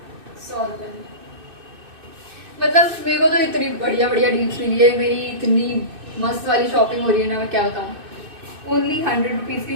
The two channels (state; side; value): late; left; 2.6 ms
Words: 100 रुपये में। मतलब मेरे को तो इतनी बढ़िया बढ़िया डील्स मिली है, मेरी इतनी मस्त वाली शॉपिंग हो रही है ना, मैं क्या बताऊँ। ओनली 100 रुपीज़